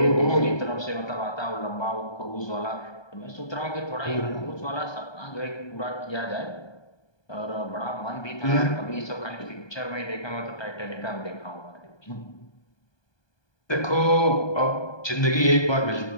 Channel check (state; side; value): late; right; 1.2 ms